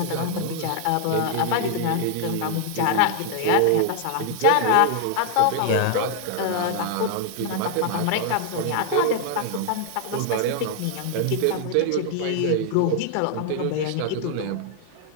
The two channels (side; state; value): both; different; correlation 0.00